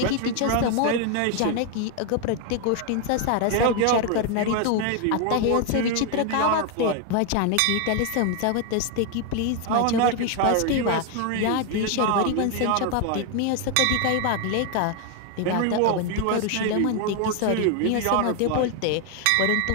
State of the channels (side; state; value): both; different; correlation 0.00